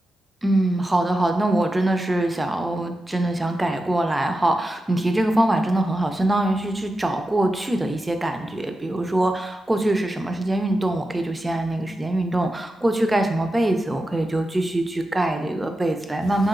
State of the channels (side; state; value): both; normal; correlation 0.91